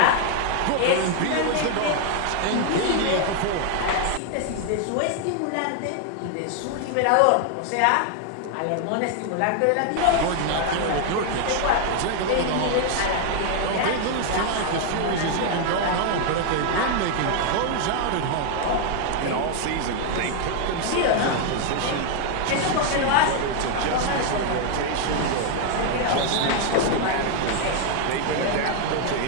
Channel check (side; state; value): both; different; correlation 0.00